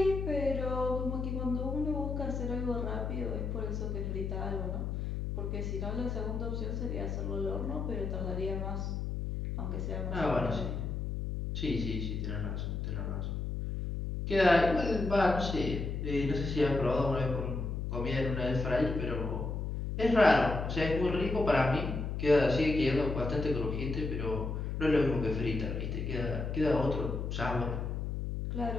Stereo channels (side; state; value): left; noise; hum, 3 dB below the sound